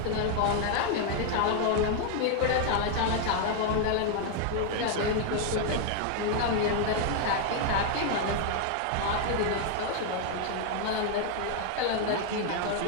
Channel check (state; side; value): different; both; correlation 0.00